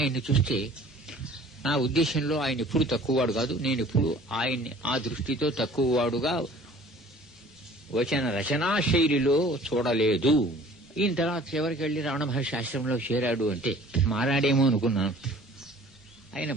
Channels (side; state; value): both; normal; correlation 0.49